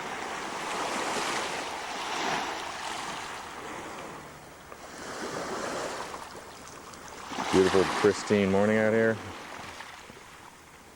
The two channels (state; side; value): identical; both; correlation 1.00